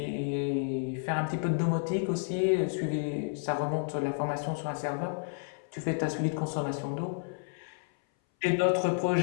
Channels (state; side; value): silent; right; 57 dB below the other